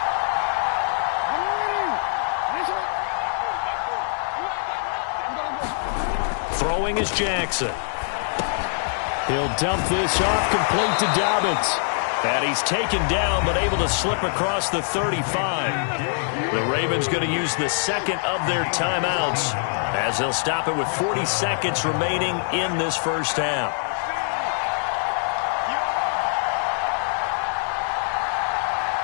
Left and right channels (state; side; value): silent; right; digital silence